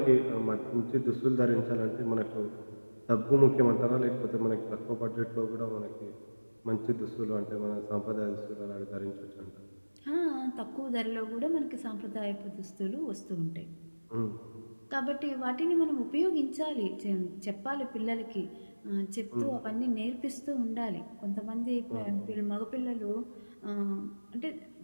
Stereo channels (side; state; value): both; inverted; correlation -1.00